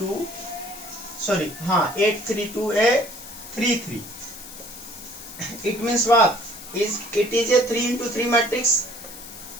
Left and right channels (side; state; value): left; noise; hiss, 14 dB below the sound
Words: सॉरी हाँ A32, A33. It means what, it is a 3x3 matrix.